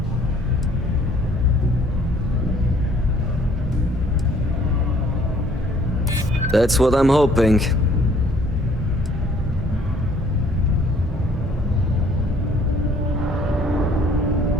That's what I'm hoping.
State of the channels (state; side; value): normal; both; correlation 0.59